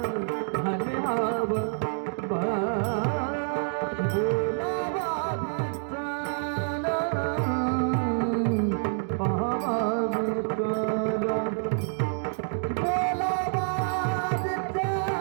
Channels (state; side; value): silent; left; digital silence